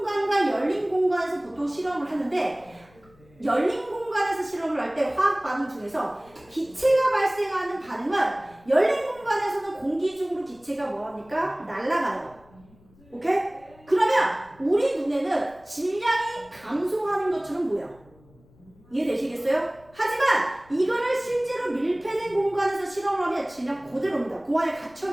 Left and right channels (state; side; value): noise; left; rumble, 28 dB below the sound